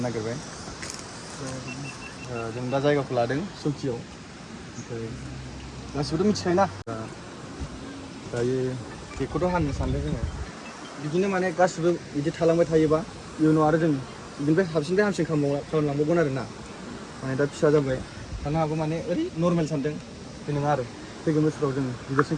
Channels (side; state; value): both; identical; correlation 1.00